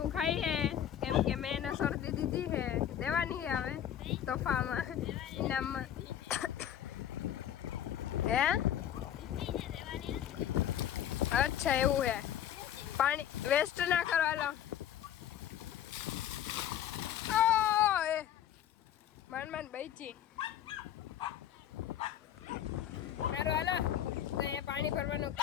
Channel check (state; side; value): quieter; right; 10.6 dB